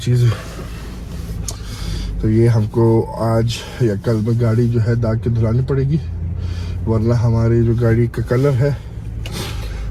है। तो ये हमको आज या कल में गाड़ी जो है दाग के धुलानी पड़ेगी, वरना हमारी जो गाड़ी का कलर है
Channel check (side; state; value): both; identical; correlation 1.00